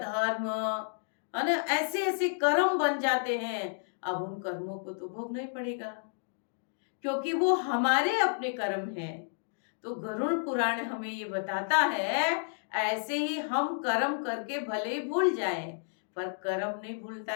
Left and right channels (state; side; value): silent; right; digital silence